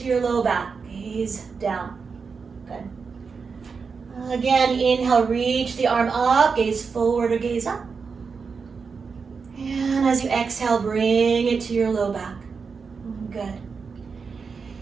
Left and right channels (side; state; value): left; quieter; 5.3 dB